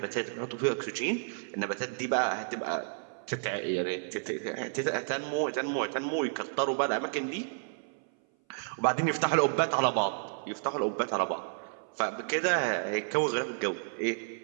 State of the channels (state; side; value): silent; left; 57 dB below the other